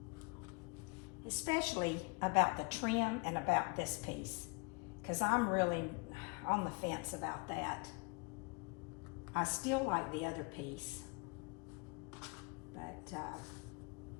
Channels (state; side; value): quieter; right; 31.9 dB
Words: especially about the trim and about this piece, because I'm really on the fence about that. I still like the other piece, but